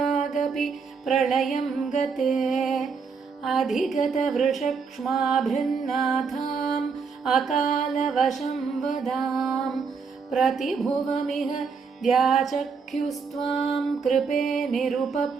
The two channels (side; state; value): left; quieter; 5.4 dB